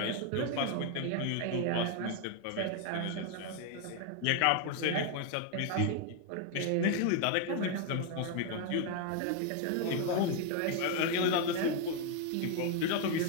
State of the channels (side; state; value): both; different; correlation 0.01